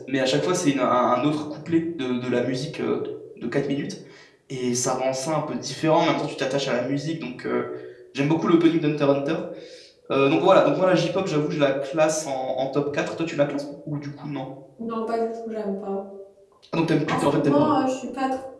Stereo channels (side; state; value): both; identical; correlation 1.00